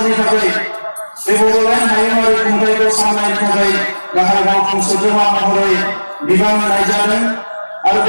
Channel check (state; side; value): inverted; both; correlation -1.00